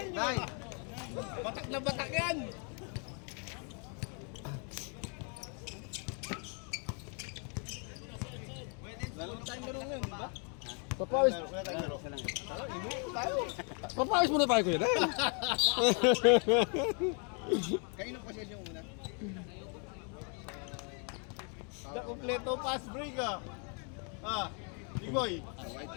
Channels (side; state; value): right; quieter; 39.3 dB